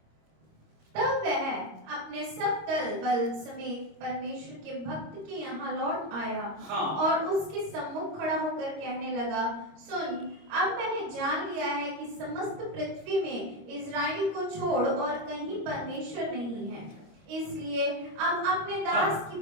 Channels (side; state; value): left; late; 26 ms